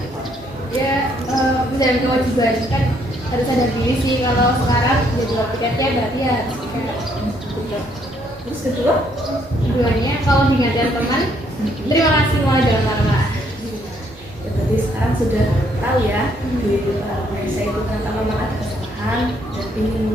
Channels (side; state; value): both; normal; correlation 0.69